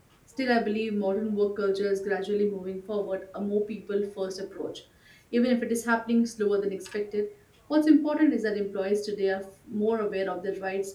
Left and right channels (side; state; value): both; identical; correlation 1.00